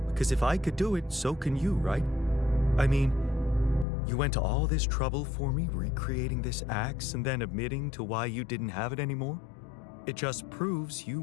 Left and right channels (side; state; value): right; drops out; at 3.9 s